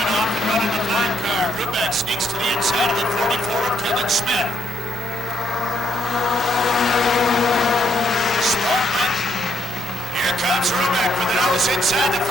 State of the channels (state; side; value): normal; both; correlation 0.74